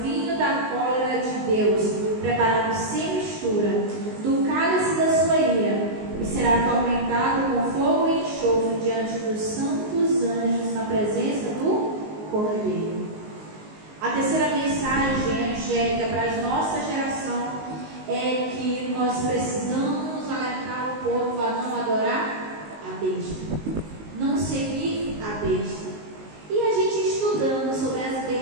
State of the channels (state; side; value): late; left; 19 ms